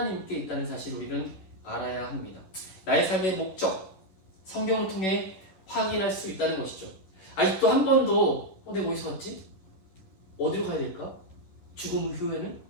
있다는 사실을 우리는 알아야 합니다. 나의 삶의 목적, 성경을 통해 확인할 수 있다는 것이죠. 아직도 한 번도 내가 어디서 왔지? 어디로 가야 될까? 죽음 후에는?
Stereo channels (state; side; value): late; right; 11 ms